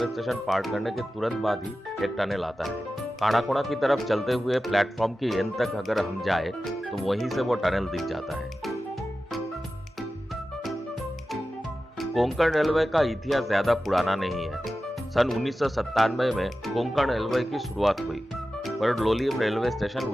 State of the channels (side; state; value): both; normal; correlation 0.94